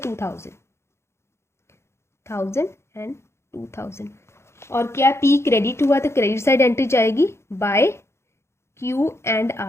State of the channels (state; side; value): late; right; 0.13 ms